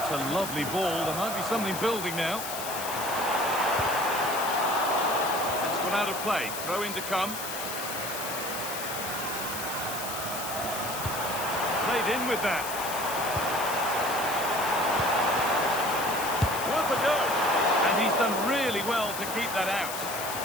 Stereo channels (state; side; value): noise; left; hiss, 7 dB below the sound